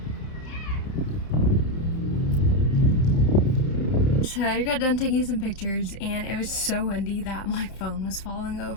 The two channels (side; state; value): right; late; 30 ms